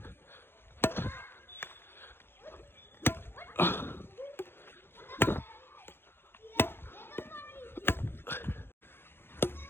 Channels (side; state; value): right; late; 0.11 ms